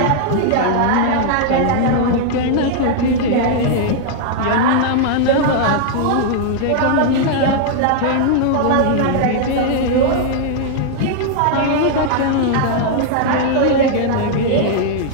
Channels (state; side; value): different; both; correlation -0.01